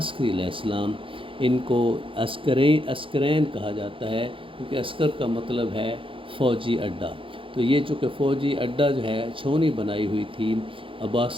علیہ السلام۔ ان کو عسکرین کہا جاتا ہے، کیونکہ عسکر کا مطلب ہے فوجی اڈا۔ تو یہ چونکہ فوجی اڈا جو ہے چھونی بنائی ہوئی تھی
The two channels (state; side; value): late; left; 0.25 ms